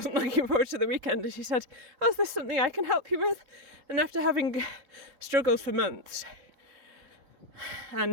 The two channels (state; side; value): late; left; 3.7 ms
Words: looking forward to the weekend. And she said, oh, is this something I can help you with? And after having struggled for months and